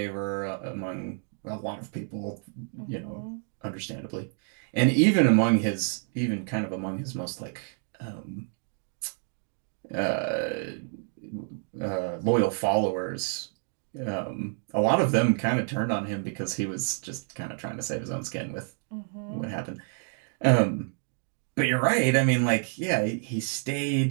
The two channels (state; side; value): silent; left; 59 dB below the other